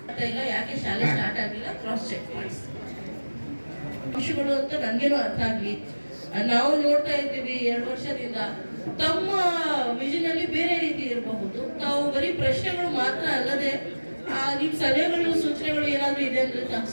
ಇಲ್ಲ ಯಾಕೆ ಶಾಲೆ ಸ್ಟಾರ್ಟ್ ಆಗಿಲ್ಲ ಕ್ರಾಸ್ ಚೆಕ್ ಮಾಡಿ ಅಂಶಗಳು ಅಂತ ನನ್ಗೇನು ಅರ್ಥ ಆಗ್ಲಿ. ನಾವು ನೋಡ್ತಾ ಇದ್ದೀವಿ 2 ವರ್ಷದಿಂದ ತಮ್ಮ ವಿಷನ್ ಅಲ್ಲಿ ಬೇರೆ ರೀತಿ ಇರಬಹುದು. ತಾವು ಬರೀ ಪ್ರಶ್ನೆಗಳು ಮಾತ್ರ ಅಲ್ಲದೆ ನಿಮ್ ಸಲಹೆಗಳು ಸೂಚನೆಗಳು ಏನಾದ್ರು ಇದೆ ಅಂದ್ರೆ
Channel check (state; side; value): inverted; both; correlation -1.00